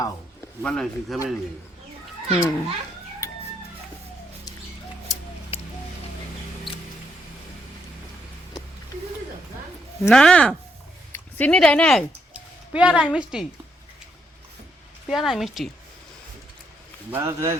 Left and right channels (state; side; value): normal; both; correlation 0.76